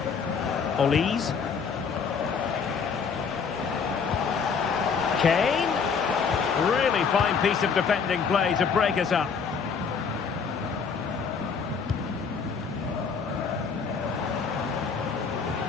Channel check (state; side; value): quieter; right; 5.9 dB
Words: Olise. Kane. Really fine piece of defending play to break us up.